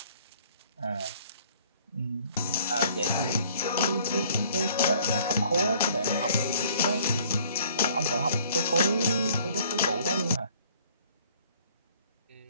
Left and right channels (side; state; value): both; inverted; correlation -0.57